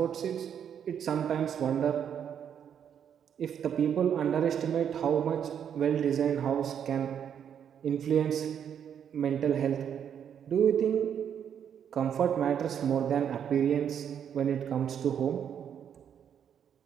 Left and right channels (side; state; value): left; quieter; 8.5 dB